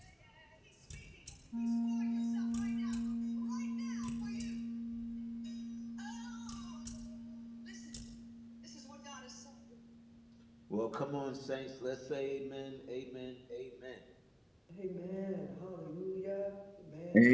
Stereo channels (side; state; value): both; identical; correlation 1.00